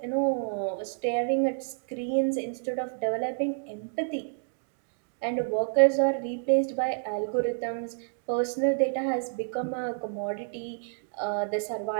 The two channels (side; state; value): left; silent; digital silence